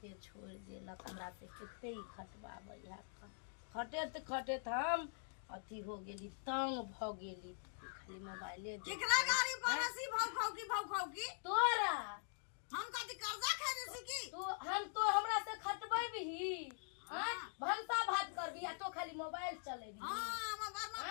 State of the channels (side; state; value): right; silent; digital silence